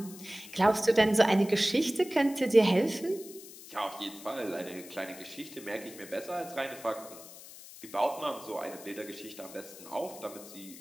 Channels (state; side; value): noise; left; hiss, 16 dB below the sound